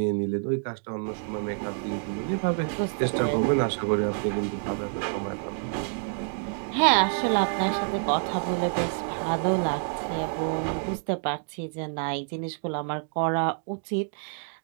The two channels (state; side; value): silent; left; 60 dB below the other